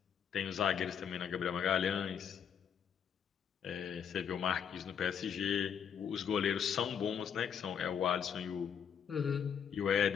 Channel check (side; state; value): right; quieter; 7.8 dB